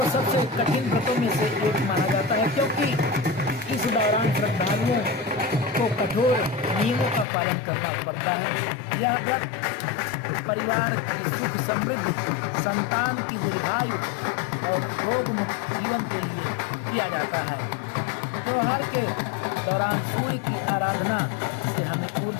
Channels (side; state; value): right; drops out; at 7.2 s